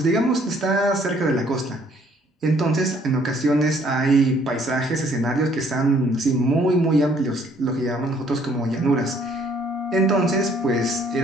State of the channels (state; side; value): normal; both; correlation 0.63